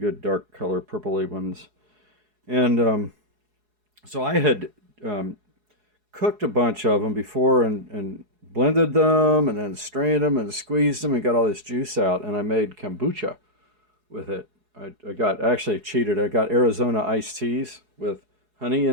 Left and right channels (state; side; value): late; left; 4.7 ms